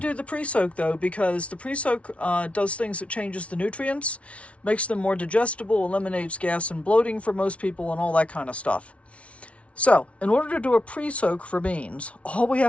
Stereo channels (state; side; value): late; right; 0.063 ms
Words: do the pre-soak though, because the pre-soak does things that changes the nutrients, makes them more digestible, eliminates gas and bloating for most people, and all that kind of stuff. So, in order to do a pre-soak for beans, all we